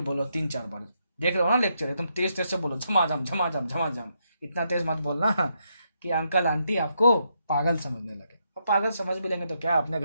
3-4 बार, देख रहे हो ना लेक्चर, एकदम तेज तेज से बोलो, झमाझम झमाझम झमाझम। इतना तेज मत बोलना कि अंकल आंटी आपको पागल समझने लगे। और पागल समझ भी लेंगे तो क्या, अपने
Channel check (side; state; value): both; inverted; correlation -0.79